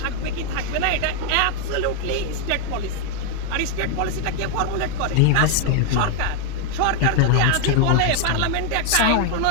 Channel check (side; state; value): both; different; correlation 0.00